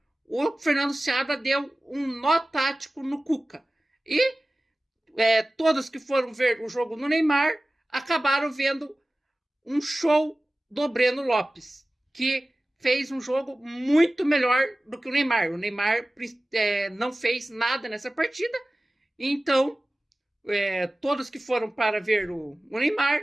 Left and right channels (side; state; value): both; normal; correlation 0.97